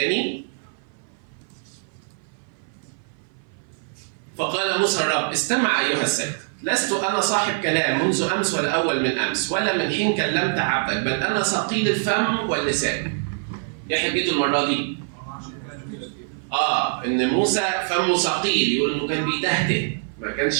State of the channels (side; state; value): left; silent; 57 dB below the other